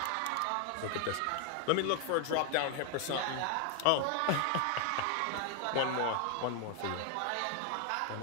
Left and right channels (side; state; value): both; different; correlation 0.01